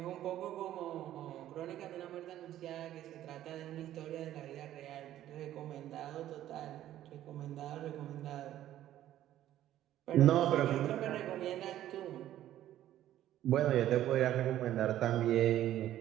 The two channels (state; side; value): quieter; left; 12.8 dB